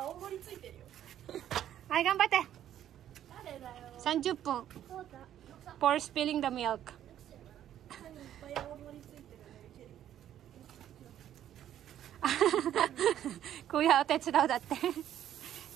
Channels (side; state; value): left; quieter; 11.1 dB